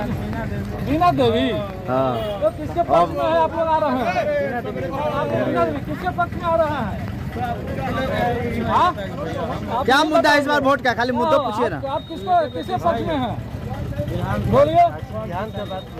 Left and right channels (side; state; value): both; identical; correlation 1.00